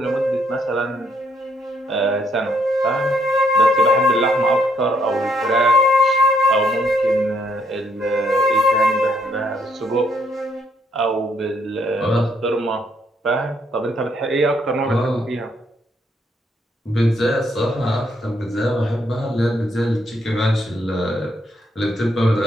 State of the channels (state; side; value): normal; both; correlation 0.72